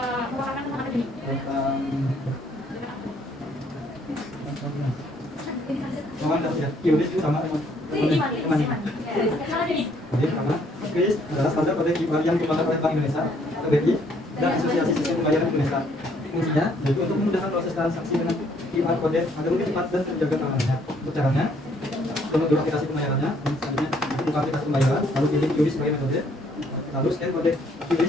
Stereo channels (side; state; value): both; normal; correlation 0.65